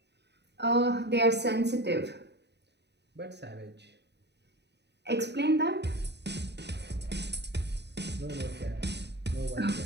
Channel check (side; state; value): left; late; 0.50 ms